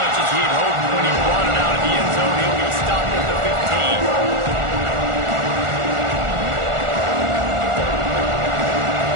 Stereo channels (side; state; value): left; late; 1.4 ms